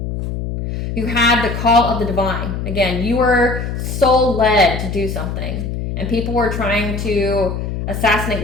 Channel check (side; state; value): left; noise; hum, 4 dB below the sound